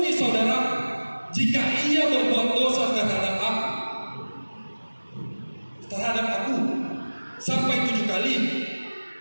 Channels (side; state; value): both; inverted; correlation -1.00